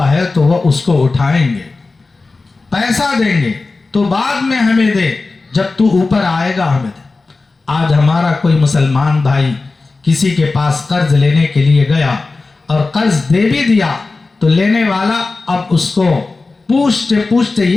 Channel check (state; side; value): quieter; right; 3.7 dB